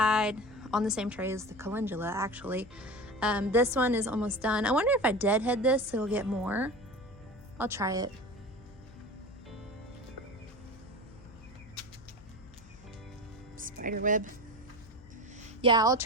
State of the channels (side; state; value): left; noise; hum, 22 dB below the sound